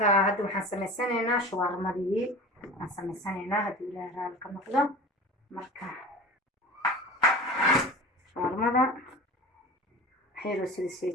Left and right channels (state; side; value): normal; both; correlation 0.34